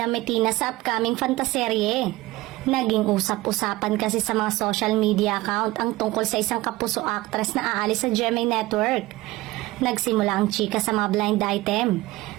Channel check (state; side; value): quieter; left; 18.9 dB